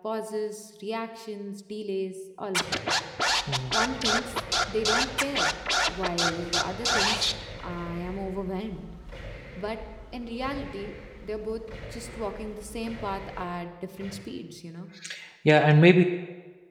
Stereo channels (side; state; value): both; identical; correlation 1.00